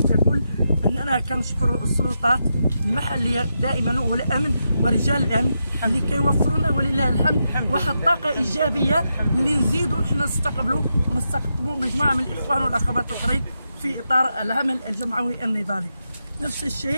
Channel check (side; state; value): both; inverted; correlation -0.85